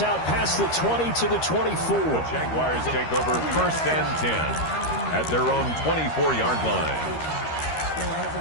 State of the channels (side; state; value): right; late; 13 ms